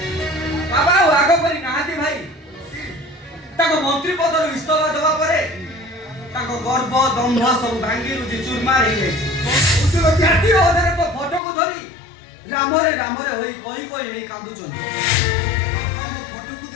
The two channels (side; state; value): right; drops out; at 11.4 s